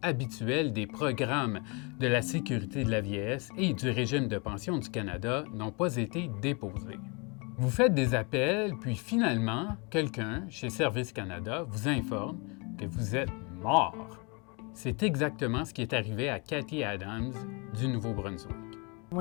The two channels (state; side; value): quieter; right; 31.6 dB